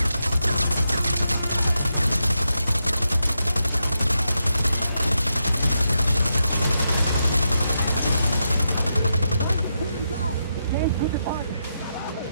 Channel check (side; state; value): both; inverted; correlation -0.85